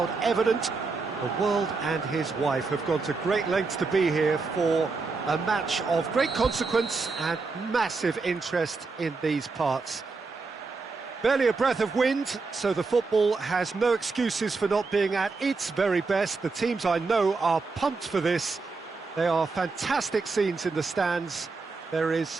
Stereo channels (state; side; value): quieter; left; 4.2 dB